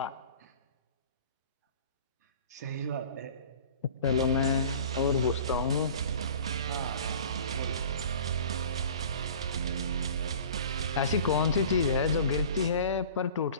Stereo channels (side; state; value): both; inverted; correlation -0.43